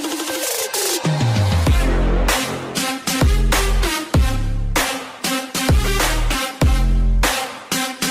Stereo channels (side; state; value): both; identical; correlation 1.00